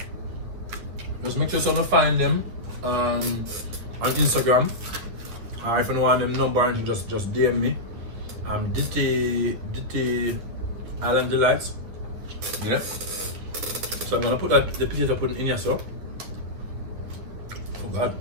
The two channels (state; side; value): late; left; 9.9 ms